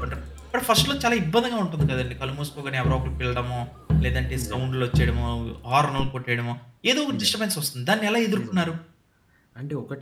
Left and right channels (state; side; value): identical; both; correlation 1.00